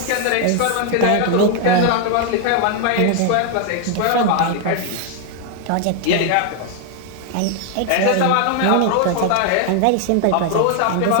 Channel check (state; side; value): different; both; correlation 0.00